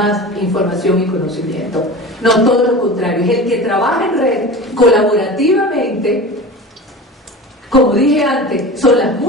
información y conocimiento. No, todo lo contrario. Es el que trabaja en red colaborativamente. Como dije antes, son las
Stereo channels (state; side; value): normal; both; correlation 0.33